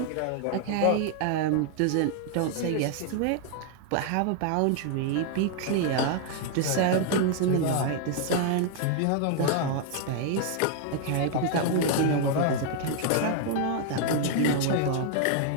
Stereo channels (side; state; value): both; different; correlation 0.00